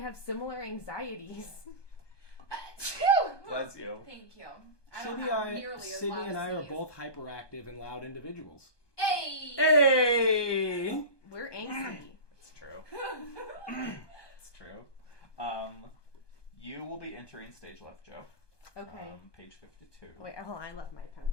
similar anxieties. Bless you. Thank you. I don't have nearly as Sydney loud and I as are these. both hyperactive and loud individuals. Hey! Hey! We're angsty. It's true. It's true. You will be entering stage left, Joe. Okay. Page 52. Wait, hold on. I left my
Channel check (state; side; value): late; right; 1.2 ms